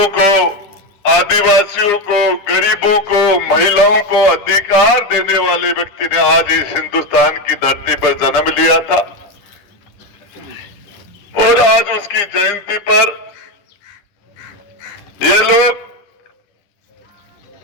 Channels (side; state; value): right; late; 10 ms